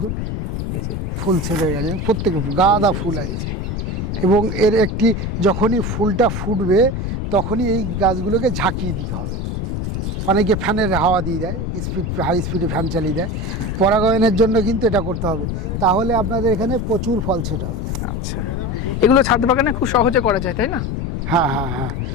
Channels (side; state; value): left; noise; rumble, 3 dB below the sound